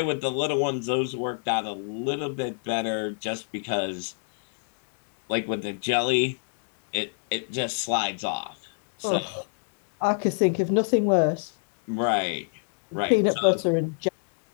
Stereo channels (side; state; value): right; silent; digital silence